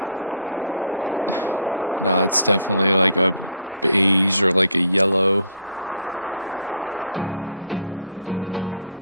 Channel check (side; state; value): both; inverted; correlation -0.58